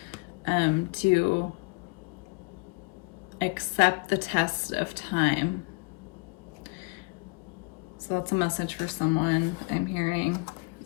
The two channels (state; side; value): quieter; right; 29.7 dB